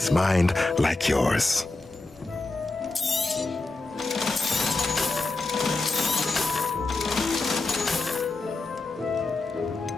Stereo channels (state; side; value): quieter; right; 3.3 dB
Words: mind like yours.